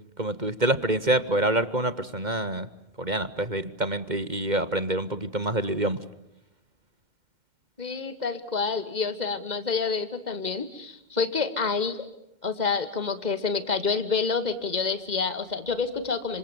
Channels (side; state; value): left; late; 2.1 ms